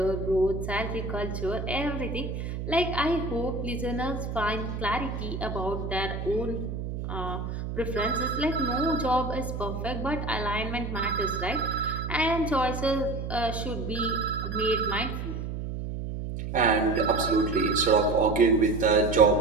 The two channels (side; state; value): right; noise; hum, 5 dB below the sound